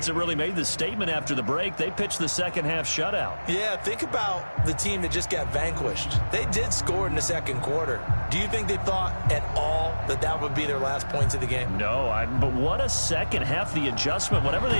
that really made the statement after the break. They pitched the second half shutout. Yeah, think about the team that just got vanquished. They did score in the 2nd quarter. Do you think they thought at all that that would be their last points of the game? No, but what a second half. The adjustment, whatever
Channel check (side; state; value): both; inverted; correlation -1.00